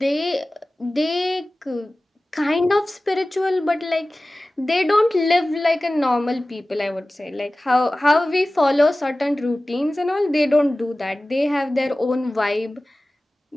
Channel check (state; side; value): normal; both; correlation 0.97